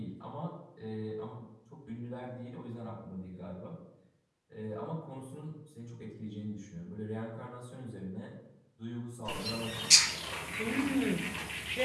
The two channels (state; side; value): identical; both; correlation 1.00